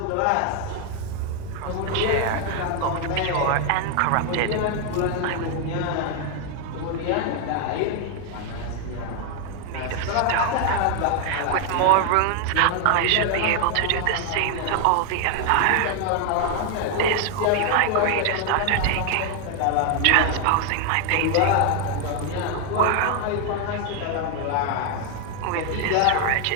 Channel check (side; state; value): both; different; correlation 0.01